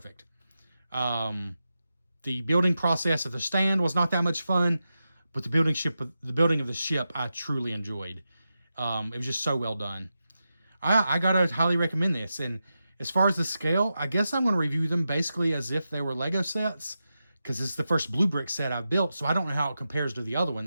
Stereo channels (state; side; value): inverted; both; correlation -0.90